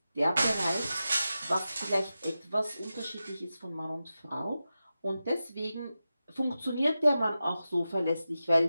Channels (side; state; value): both; inverted; correlation -0.92